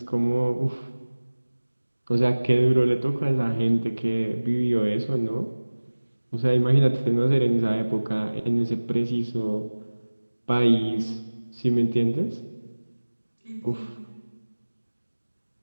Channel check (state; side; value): inverted; both; correlation -1.00